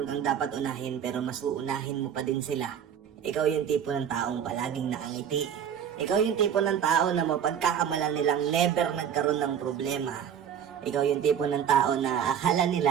kang dapat unahin, pero mas uunahin mo pa din sila. Ikaw yung tipo ng taong palaging nakangiti. Ikaw yung tipo ng tao na mapagkakamalan nilang never nagkaroon ng problema. Ikaw yung tipo ng tao na akala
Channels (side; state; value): left; quieter; 8.6 dB